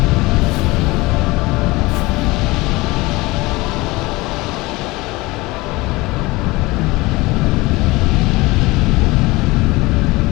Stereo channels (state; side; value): quieter; right; 21.8 dB